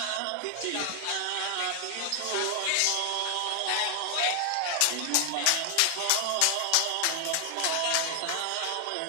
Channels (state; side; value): different; both; correlation 0.00